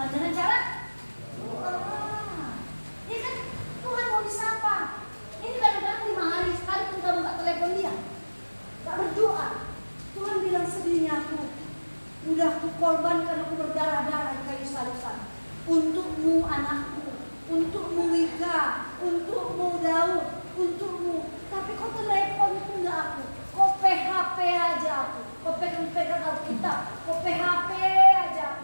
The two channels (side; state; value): both; inverted; correlation -1.00